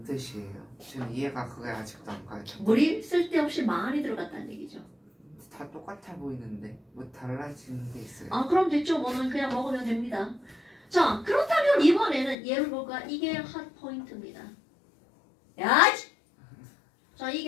뜻이에요? 전 이해가 그게 아직도 안 가요. 물이 쓸데없이 많이 들어갔다는 얘기죠. 다 똑같아 보이는데 뭐 달라지는 게 있어요? 그럼 됐죠. 뭐는 그냥 먹으면 됩니다. 자, 그렇다면 이번에는 얘를 볼까? 이게 핫 포인트입니다. 야! 자,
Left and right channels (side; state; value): right; drops out; at 12.4 s